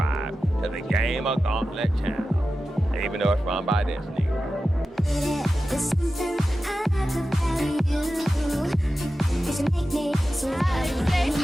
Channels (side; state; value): both; normal; correlation 0.93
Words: to the GamerGauntlet channel, even though it's run by this nigga.